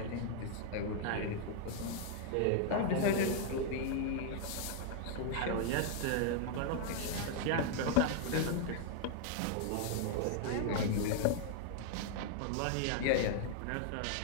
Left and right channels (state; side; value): different; both; correlation 0.00